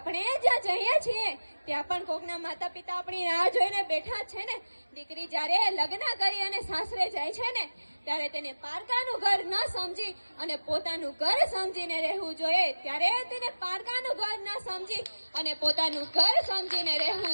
જ્યાં જઈએ છીએ ત્યાં પણ કોકના માતા પિતા આપણી રાહ જોઈને બેઠા છે ને। દીકરી જ્યારે લગ્ન કરી અને સાસરે જાય છે ને ત્યારે તેને પારકાનું ઘર ન સમજી અને પોતાનું ઘર સમજીને રહેવું જોઈએ। ત્યારે તેને પારકાનું ઘર ન સમજી અને પોતાનું ઘર સમજીને રહેવું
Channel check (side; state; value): both; inverted; correlation -1.00